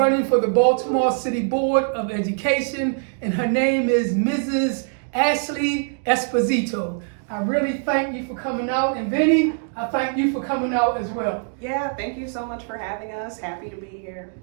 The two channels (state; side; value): silent; left; 60 dB below the other